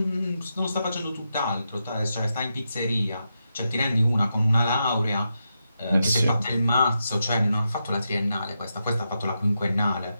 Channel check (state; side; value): inverted; both; correlation -0.86